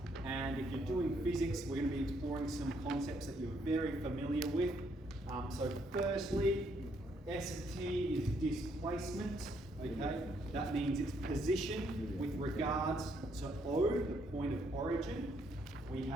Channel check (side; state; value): both; normal; correlation 0.72